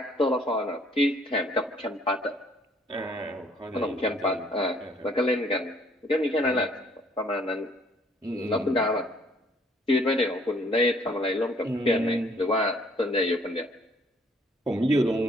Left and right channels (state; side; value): normal; both; correlation 0.62